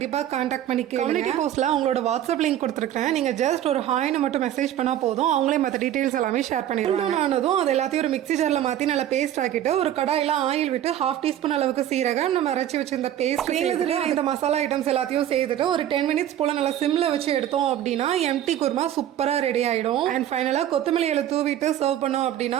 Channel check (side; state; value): left; quieter; 11.5 dB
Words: கான்டாக்ட் பண்ணிக்க. கம்யூனிட்டி போஸ்ட்ல அவங்களோட வாட்ஸ்அப் லிங்க் கொடுத்துருக்கேன். நீங்க ஜஸ்ட் ஒரு ஹாய்னு மட்டும் மெசேஜ் பண்ணா போதும், அவங்களே மற்ற டீடைல்ஸ் எல்லாமே ஷேர் பண்ணிடுவாங்க. ஆனதும் அது எல்லாத்தையும் ஒரு மிக்ஸி ஜார்ல மாத்தி நல்லா பேஸ்ட் ஆக்கிட்டு ஒரு கடாயில ஆயில் விட்டு 1/2 டீஸ்பூன் அளவுக்கு சீரகம் நம்ம அரைச்சி வச்சிருந்த பேஸ்ட் இந்த மசாலா ஐட்டம்ஸ் எல்லாத்தையும் சேர்த்துட்டு ஒரு 10 மினிட்ஸ் போல நல்லா சிம்ல வச்சு எடுத்தோம் அப்படின்னா எம்டி குருமா சூப்பரா ரெடி ஆயிடும். அண்ட் ஃபைனலா கொத்தமல்லி இலை தூவிட்டு சர்வ் பண்ணோம்